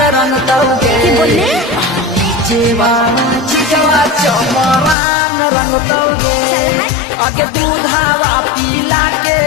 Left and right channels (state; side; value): drops out; right; at 5.0 s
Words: रंग तौगे चिजवा चमरान रंग तौगे आगे दूधावा पीला के